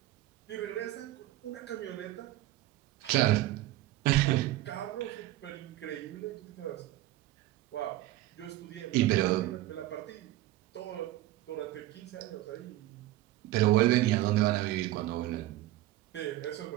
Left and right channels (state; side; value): quieter; left; 16.1 dB